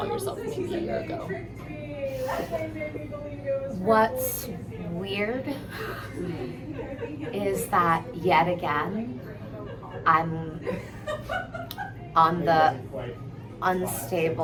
yourself maybe a year ago? What's weird is that yet again, I'm on the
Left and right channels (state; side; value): identical; both; correlation 1.00